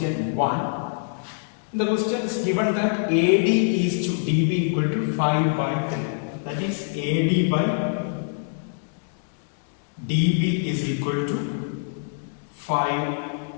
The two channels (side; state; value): right; silent; digital silence